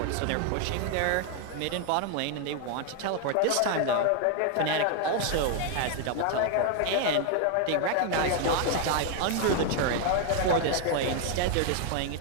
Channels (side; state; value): both; different; correlation 0.00